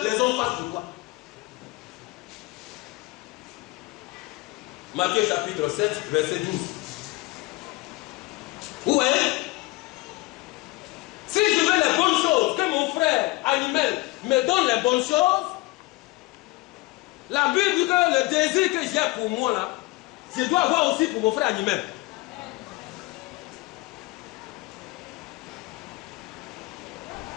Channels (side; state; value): right; quieter; 21.8 dB